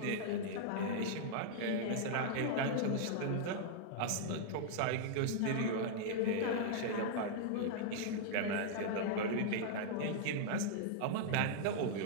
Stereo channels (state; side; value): different; both; correlation -0.01